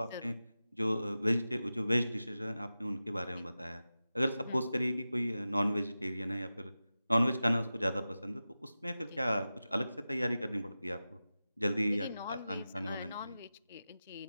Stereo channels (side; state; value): both; inverted; correlation -0.94